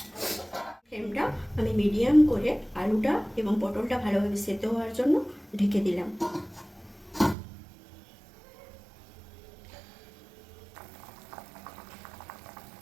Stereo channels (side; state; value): left; drops out; at 7.4 s